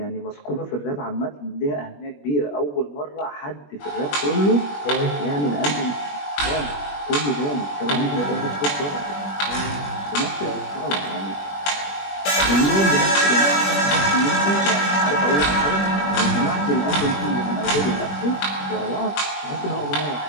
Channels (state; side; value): late; right; 21 ms